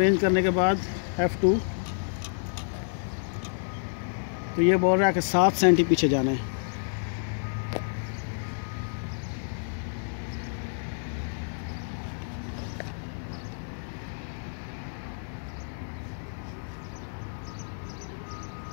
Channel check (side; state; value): right; silent; digital silence